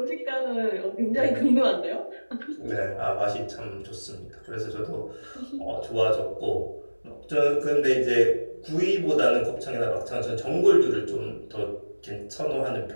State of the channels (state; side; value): inverted; both; correlation -1.00